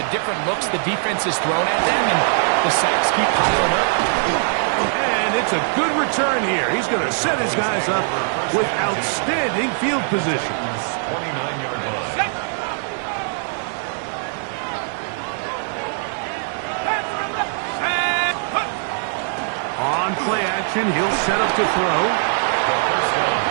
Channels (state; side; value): silent; left; digital silence